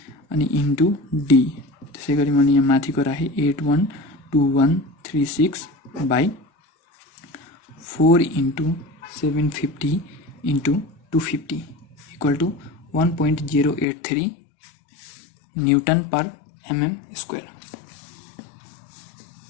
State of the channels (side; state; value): right; drops out; at 13.9 s